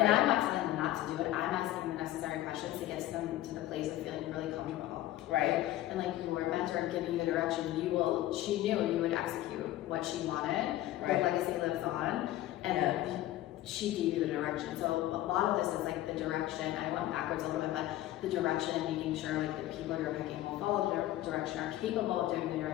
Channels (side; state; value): right; quieter; 14.6 dB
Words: I'm not telling them not to do it. I'm asking the necessary questions to get them to the place of feeling really comfortable, right? And like your mentor giving you the direction, she knew you would execute what she wanted. Her legacy lives on, and she gave you the direction. So a lot of this is like the direction. I went backwards a little bit, but the direction and making sure like the people you're picking will follow the direction, are capable of doing the